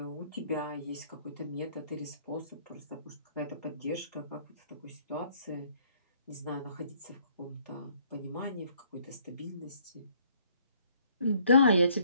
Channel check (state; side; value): inverted; both; correlation -0.63